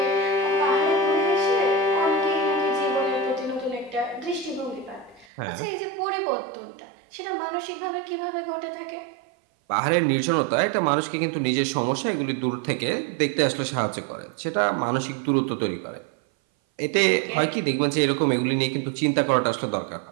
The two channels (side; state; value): left; drops out; at 5.2 s